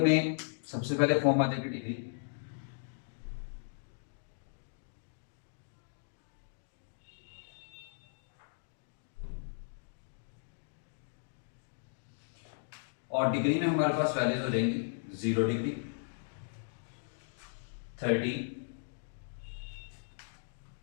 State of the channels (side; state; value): right; silent; digital silence